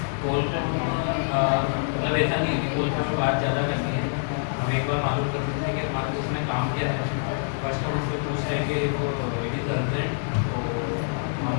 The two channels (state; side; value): silent; right; 61 dB below the other